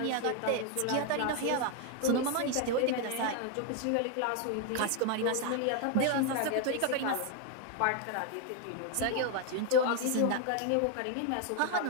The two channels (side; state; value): both; different; correlation 0.01